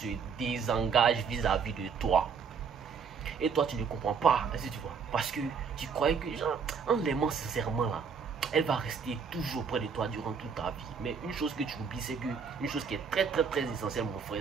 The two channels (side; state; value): left; quieter; 6.0 dB